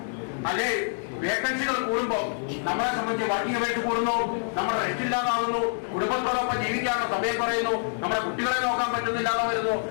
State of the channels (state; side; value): silent; right; 61 dB below the other